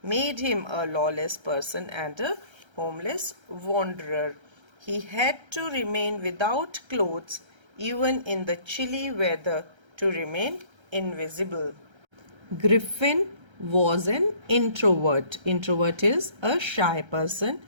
made him a lawless person and a homeless wanderer. He had to remain without clothes even in the chilly weather to remain invisible. Griffin was an introvert. Introvert is a shy person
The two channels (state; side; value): late; left; 1.3 ms